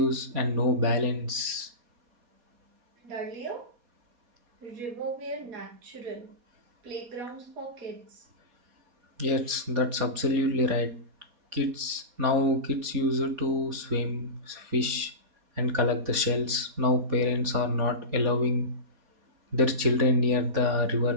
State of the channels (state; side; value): late; left; 4.2 ms